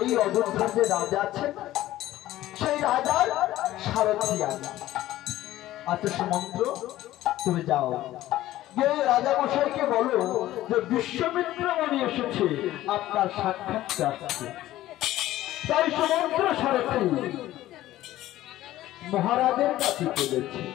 এই অযোধ্যার যে রাজা আছেন সেই রাজার সারথি আমি। আচ্ছা সুমন্ত তুমি যাও গিয়ে রাজা মশাইকে বলো যে বিশ্বামিত্র মুনি এসেছে আপনার সাক্ষাৎ চাচ্ছে। তাই সুমন্ত সারথি মহারাজের কাছে চলেছে।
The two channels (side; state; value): right; quieter; 14.9 dB